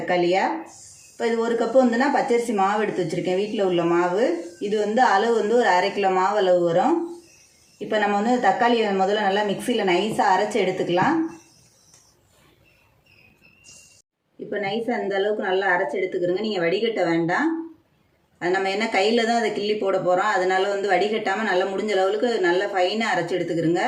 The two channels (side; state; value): both; identical; correlation 1.00